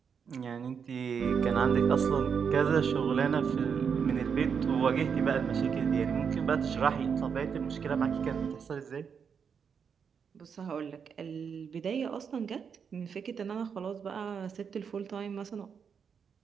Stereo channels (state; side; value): quieter; left; 6.7 dB